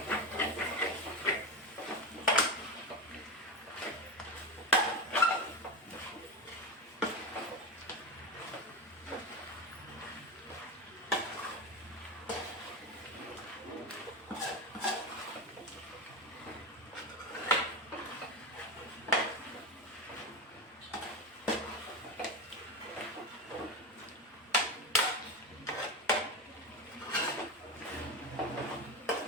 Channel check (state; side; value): normal; both; correlation 0.19